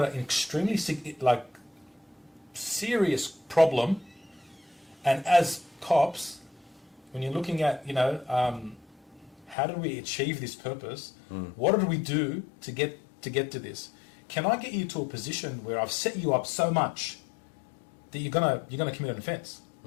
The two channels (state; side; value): drops out; right; at 9.6 s